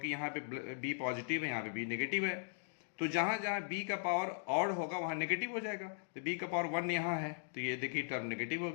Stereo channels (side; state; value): right; silent; digital silence